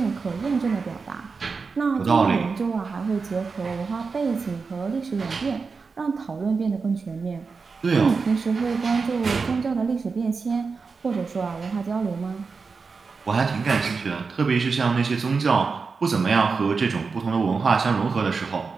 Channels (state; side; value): quieter; left; 4.8 dB